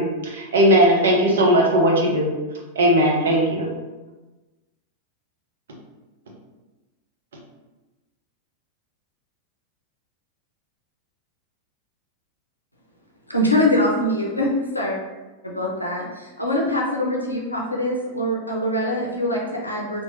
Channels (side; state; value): both; normal; correlation -0.10